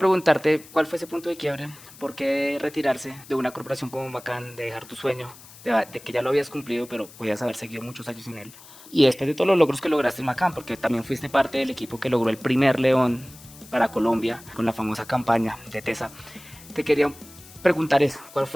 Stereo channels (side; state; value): left; noise; hiss, 20 dB below the sound